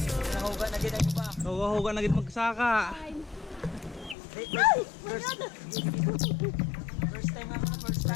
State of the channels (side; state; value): right; drops out; at 4.2 s